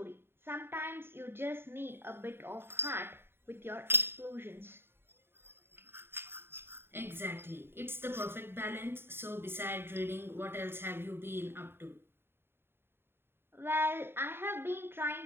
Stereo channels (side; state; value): left; late; 0.11 ms